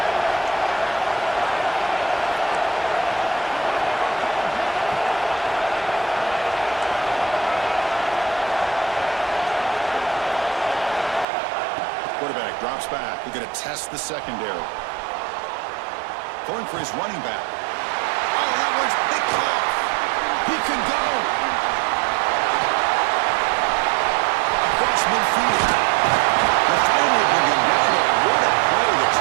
Quarterback drops back. We're going to test the secondary. Going for his running back. Oh, that one's picked off. He can go. Across midfield. The finally bring him down. What a play to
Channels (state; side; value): drops out; left; at 11.2 s